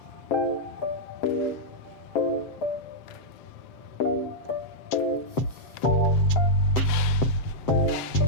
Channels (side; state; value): right; late; 7.8 ms